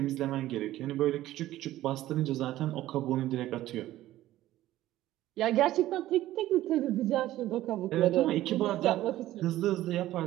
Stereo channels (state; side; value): quieter; left; 14.8 dB